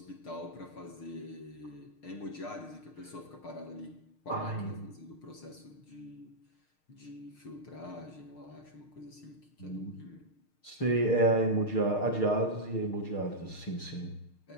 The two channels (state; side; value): late; right; 6.5 ms